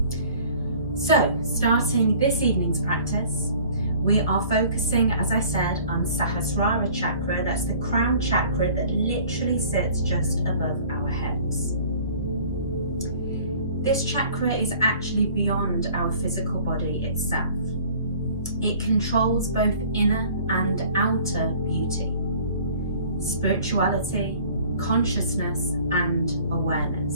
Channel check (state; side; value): inverted; both; correlation -0.51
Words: So, starting this evening's practice, we are focusing, as I said, on Sahasrara Chakra. That's the crown chakra that literally sits just above our heads. This chakra is actually beyond our physical body itself. It controls both inner and outer beauty, spirituality, consciousness and